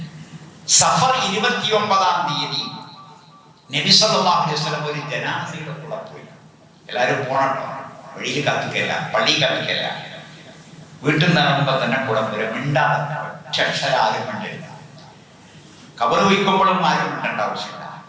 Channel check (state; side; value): identical; both; correlation 1.00